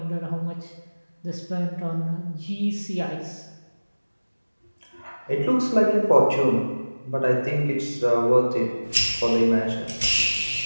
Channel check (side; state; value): both; inverted; correlation -1.00